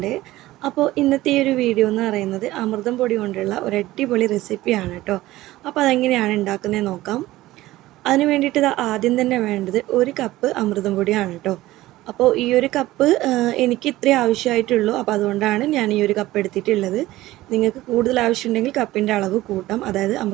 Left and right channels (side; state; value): left; quieter; 16.9 dB